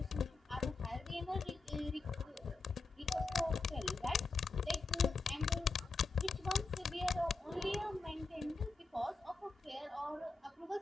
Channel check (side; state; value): right; quieter; 3.9 dB